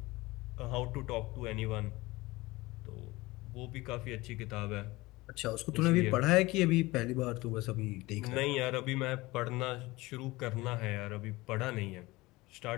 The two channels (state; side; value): quieter; right; 20.8 dB